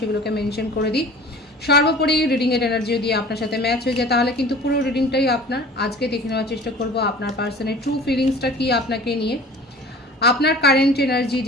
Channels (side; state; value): both; normal; correlation 0.44